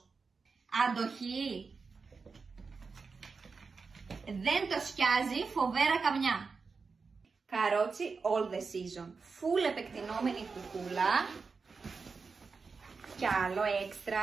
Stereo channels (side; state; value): left; quieter; 4.8 dB